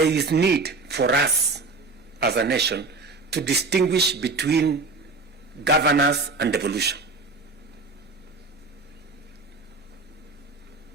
is need for us as a nation to distinguish between governance and devolution.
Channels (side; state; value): left; quieter; 3.7 dB